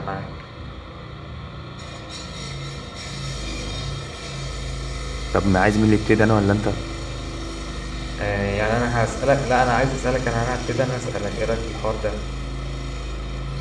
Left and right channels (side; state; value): both; identical; correlation 1.00